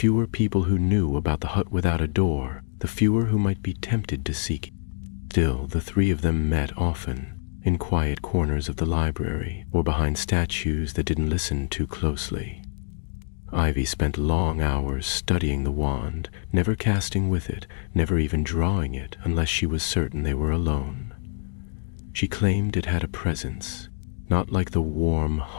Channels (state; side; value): silent; right; digital silence